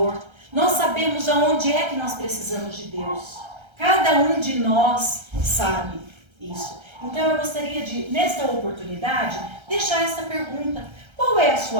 Nós sabemos aonde é que nós precisamos de Deus. Cada um de nós sabe isso. Então eu gostaria de, nesta oportunidade, deixar essa pergunta. Qual é a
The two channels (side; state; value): left; late; 1.3 ms